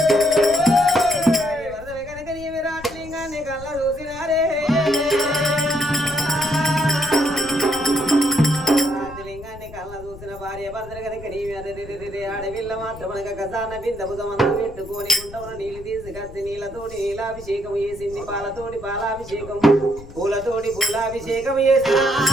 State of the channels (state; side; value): noise; left; rumble, 16 dB below the sound